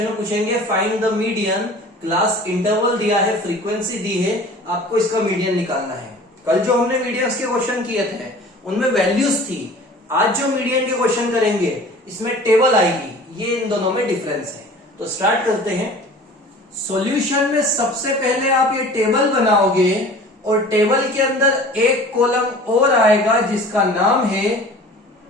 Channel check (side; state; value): both; normal; correlation 0.43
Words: में पूछेंगे find the median, class interval दिया है, फ्रीक्वेंसी दी है, आपको इसका मीडियन निकालना है। कल जो हमने मीडियंस के क्वेश्चन किए थे उनमें वैल्यूज थी, आज जो मीडियन के क्वेश्चन करेंगे इसमें टेबल आएगी। ये इन दोनों में डिफरेंस है। तो स्टार्ट करते हैं। सॉल्यूशन में सबसे पहले आप ये टेबल बनाओगे और टेबल के अंदर एक कॉलम और आएगा जिसका नाम है